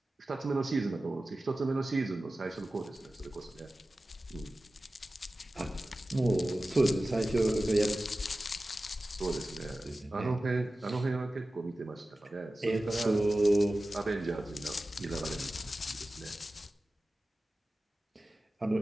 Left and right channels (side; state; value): both; normal; correlation 0.95